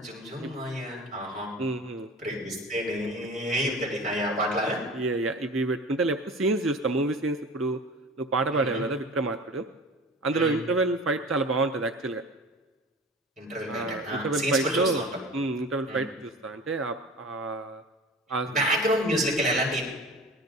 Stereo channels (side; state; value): both; normal; correlation 0.37